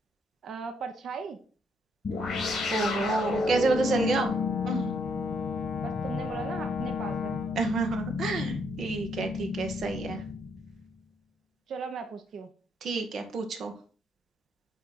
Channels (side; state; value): both; normal; correlation 0.72